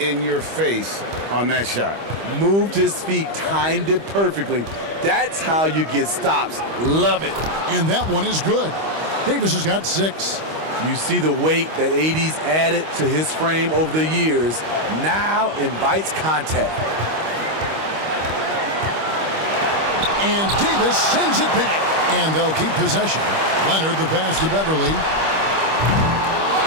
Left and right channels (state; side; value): late; left; 25 ms